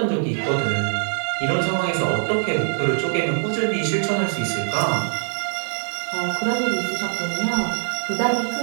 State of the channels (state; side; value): silent; left; 60 dB below the other